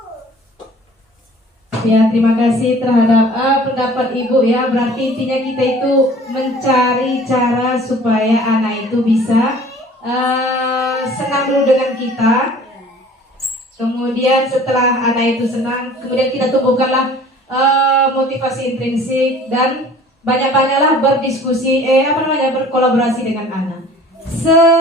Ya, terima kasih terhadap pendapat Ibu ya. Berarti intinya kita itu mencari cara supaya anak itu bisa senang dulu dengan kita. Kemudian setelah anak itu senang, kemudian kita tumbuhkanlah motivasi intrinsik dan banyak-banyaklah berdiskusi, berkolaborasi dengan anak.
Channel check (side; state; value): both; normal; correlation 0.49